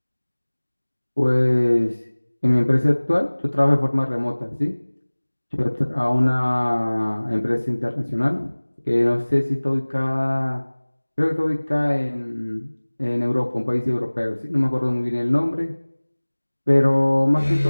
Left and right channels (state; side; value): inverted; both; correlation -1.00